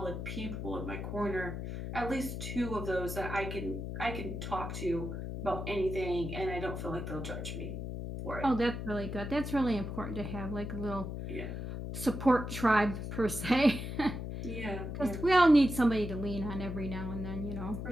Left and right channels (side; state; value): left; noise; hum, 5 dB below the sound